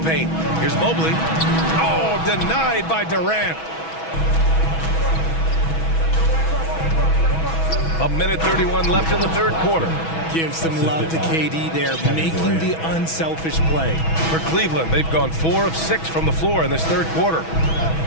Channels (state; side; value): late; right; 6.2 ms